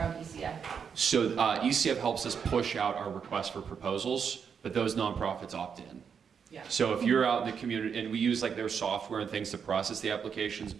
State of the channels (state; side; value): quieter; left; 6.8 dB